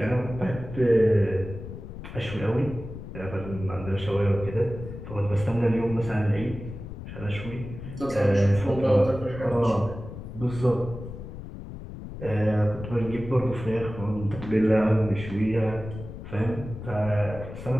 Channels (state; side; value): noise; left; rumble, 11 dB below the sound